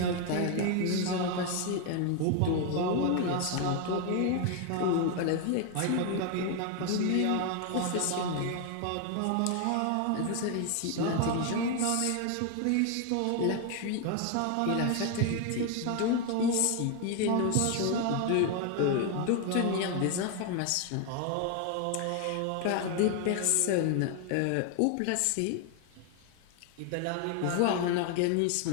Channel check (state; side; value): different; both; correlation 0.01